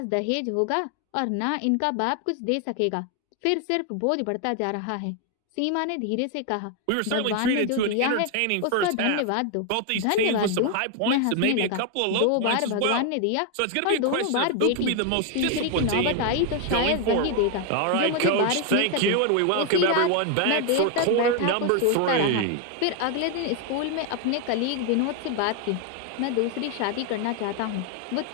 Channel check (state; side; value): different; both; correlation 0.01